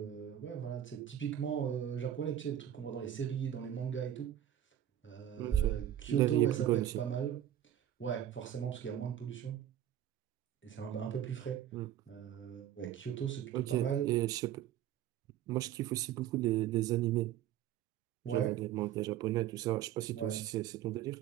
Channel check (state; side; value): quieter; left; 11.2 dB